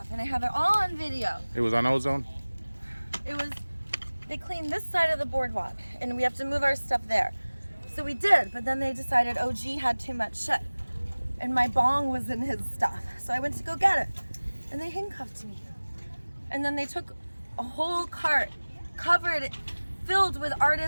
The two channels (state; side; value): inverted; both; correlation -1.00